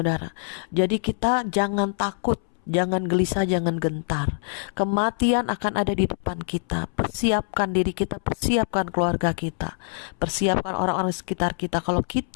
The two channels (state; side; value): silent; right; 62 dB below the other